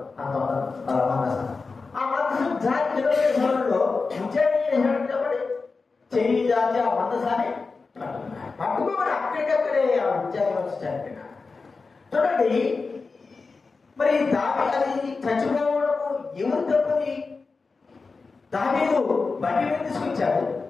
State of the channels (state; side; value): quieter; right; 4.3 dB